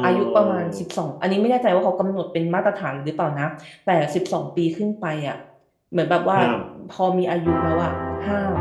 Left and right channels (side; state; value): both; identical; correlation 1.00